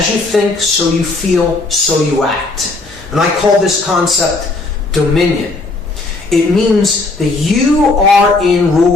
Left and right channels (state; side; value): quieter; right; 3.4 dB